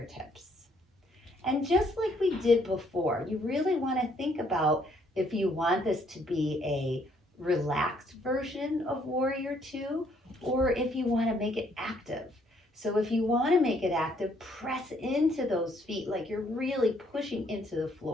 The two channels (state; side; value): normal; both; correlation 0.68